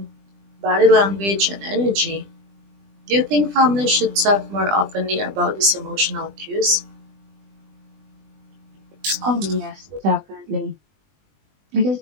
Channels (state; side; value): late; left; 20 ms